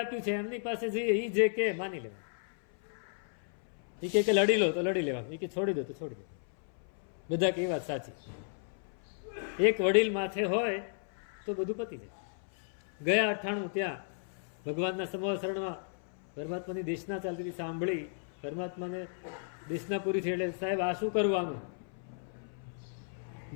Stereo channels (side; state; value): right; silent; 55 dB below the other